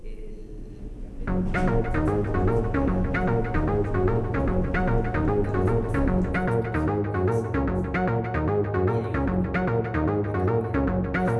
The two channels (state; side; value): identical; both; correlation 1.00